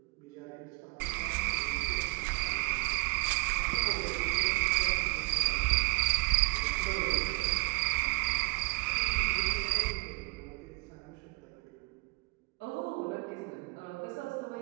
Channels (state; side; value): quieter; left; 26.9 dB